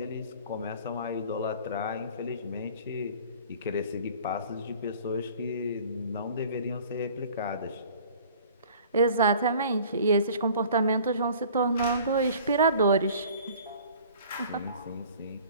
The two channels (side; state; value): both; inverted; correlation -0.48